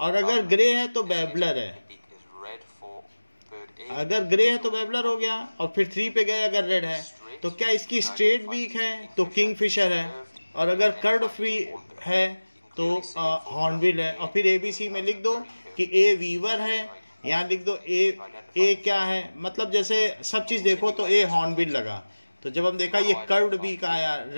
अगर ग्रे है तो बैबलर है, अगर ग्रे है तो बैबलर हो गया, और फिर 3 पे गए अगर रेड है। तो क्या इसकी स्ट्रेट बीक है? तो किंगफिशर है। और अगर कर्ड फ्री है तो हॉर्नबिल है। और फिर एबीसी में लिख दो कि ए वीवर है, यहाँ लिख दो ए क्या है, मतलब जैसे सब चीज देखो तो ए हॉर्नबिल लगा। तो जब हम देखा ये कर्व्ड बीक आया,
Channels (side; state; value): both; inverted; correlation -1.00